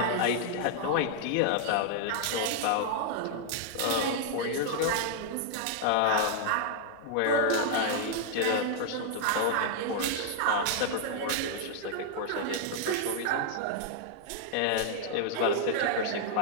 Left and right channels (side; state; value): both; different; correlation -0.01